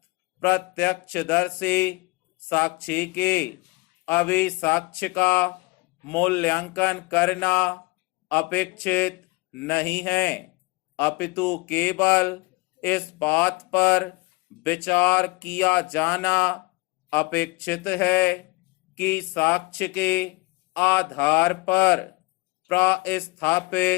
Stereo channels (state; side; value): quieter; right; 24.1 dB